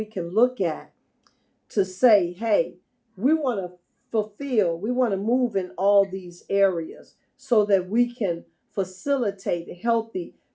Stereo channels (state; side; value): identical; both; correlation 1.00